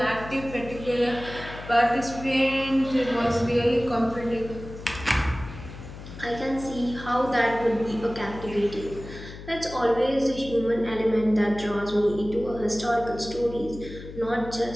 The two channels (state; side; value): noise; left; hum, 13 dB below the sound